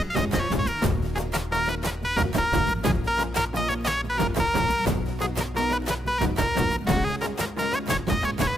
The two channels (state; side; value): normal; both; correlation 0.83